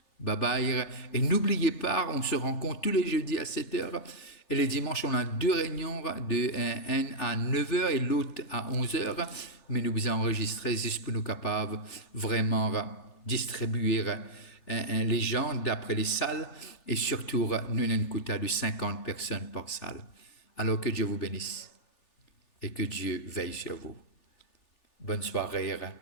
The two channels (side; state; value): right; late; 3.4 ms